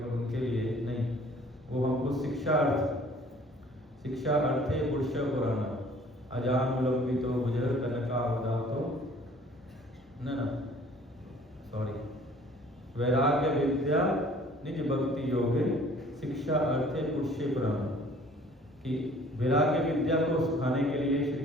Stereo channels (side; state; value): both; normal; correlation 0.54